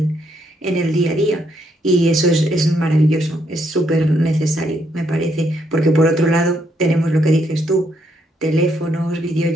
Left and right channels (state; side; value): normal; both; correlation 0.74